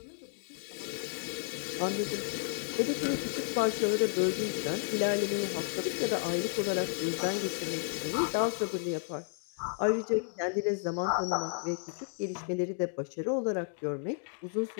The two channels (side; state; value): right; silent; 56 dB below the other